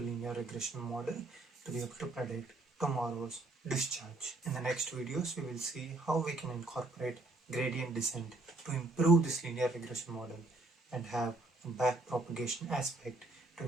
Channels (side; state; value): left; quieter; 3.0 dB